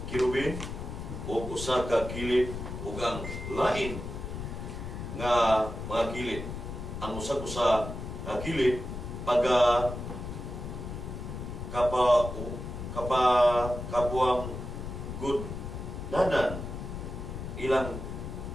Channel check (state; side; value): noise; left; rumble, 7 dB below the sound